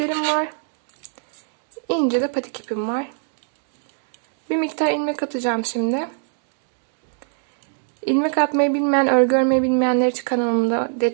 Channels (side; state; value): left; silent; digital silence